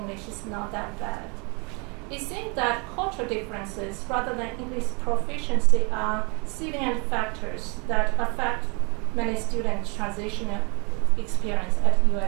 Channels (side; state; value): left; quieter; 32.1 dB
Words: is not that bad." It seems that cultural differences rather than English proficiency are salient factors that affect many students' transitional experience at